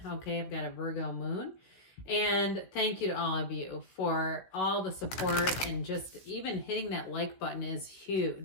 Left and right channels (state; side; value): late; right; 16 ms